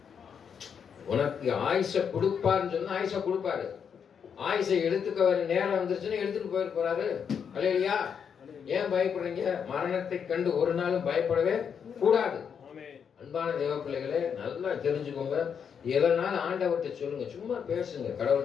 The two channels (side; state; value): right; quieter; 7.2 dB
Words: உனக்கு ஆயுச கொடுப்பாருன்னு சொன்னா ஆயுச கொடுப்பாரு. ஆயுசை எடுத்துக்க வர நேரம் வந்துருச்சுன்னா எடுத்துட்டு போயிட்டு போறாரு. அல்லையா, ஏன் பயப்படுறீங்க? மரணத்தை கண்டு ஒரு நாளும் பயப்படவே கூடாது. அன்பான தேவ பிள்ளைகளே, நல்லா தெரிஞ்சுக்கோங்க. எதனால ஆண்டவர்கிட்ட சொல்லுங்க, சும்மா பேசுங்க,